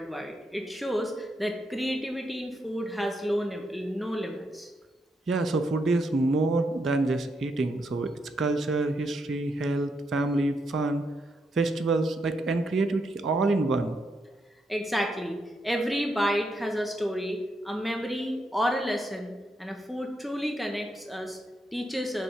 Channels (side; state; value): both; normal; correlation 0.80